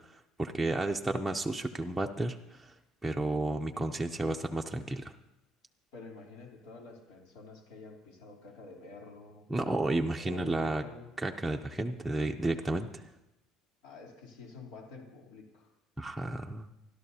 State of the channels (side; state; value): both; normal; correlation 0.89